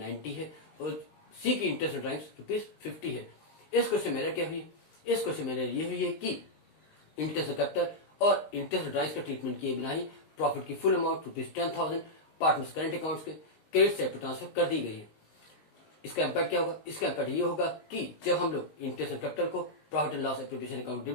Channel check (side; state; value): right; late; 19 ms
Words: है और सी की इंटरेस्ट ड्राइव्स ₹50 है। इस क्वेश्चन में क्या हुई है? इस क्वेश्चन में ये हुई है कि इंटरेस्ट कैपिटल और इंटरेस्ट ड्राइव्स का ट्रीटमेंट किए बिना ही प्रॉफिट की full amount ₹10,000 partners current accounts के क्रेडिट साइड पर ट्रांसफर कर दी गई है। इसका इम्पैक्ट क्या होगा? इसका इम्पैक्ट ये होगा कि जब हम लोग इंटरेस्ट कैपिटल को profit and loss appropriation account